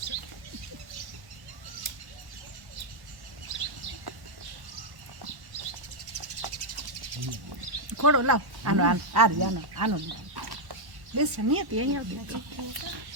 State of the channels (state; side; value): late; left; 1.1 ms